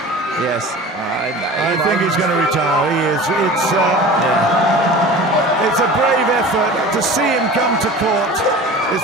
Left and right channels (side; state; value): both; normal; correlation 0.38